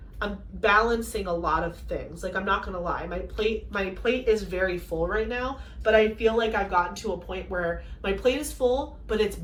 I'm balancing a lot of things. Like, I'm not gonna lie, my plate is very full right now, but I feel like I've gotten to a point where my plate is full, but it's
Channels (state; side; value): identical; both; correlation 1.00